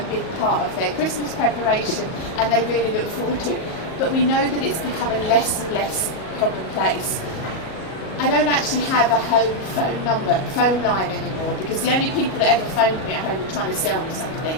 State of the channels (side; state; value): right; late; 38 ms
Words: big part of their Christmas preparation and they really look forward to. But we know that it's becoming less and less commonplace. I don't actually have a home phone line anymore, because the only people that ever phoned me at home were trying to sell me something.